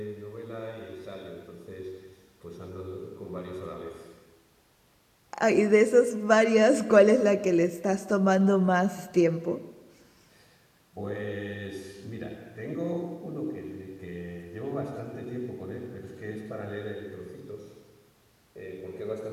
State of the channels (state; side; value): identical; both; correlation 1.00